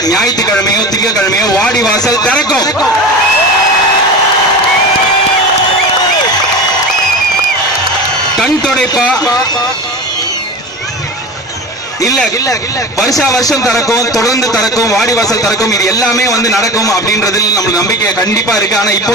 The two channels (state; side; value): normal; both; correlation 0.30